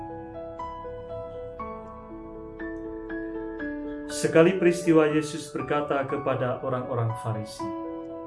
Sekali peristiwa Yesus berkata kepada orang-orang Farisi,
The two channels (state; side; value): identical; both; correlation 1.00